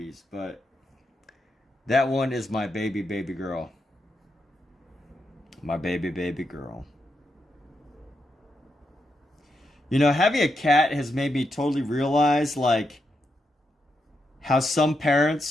but that one is my baby girl. My baby girl. You know, having a cat has made me totally realize, like, how some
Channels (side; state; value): both; normal; correlation 0.83